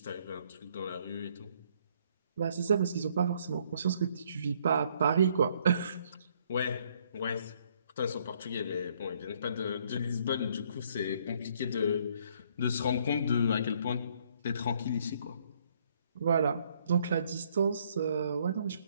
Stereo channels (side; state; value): both; inverted; correlation -0.66